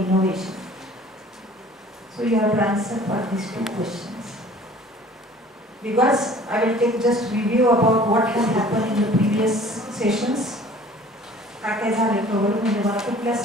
So you have to answer for these two questions. Because I will take just review about what has happened in the previous sessions. I have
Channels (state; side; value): normal; both; correlation 0.49